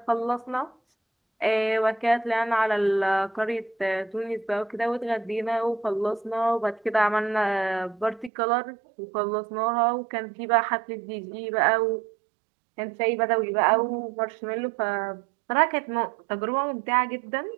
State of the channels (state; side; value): drops out; left; at 8.3 s